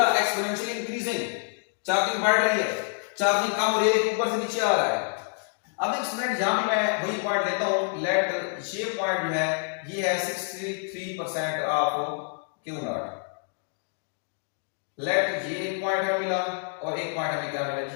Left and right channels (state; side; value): silent; right; 56 dB below the other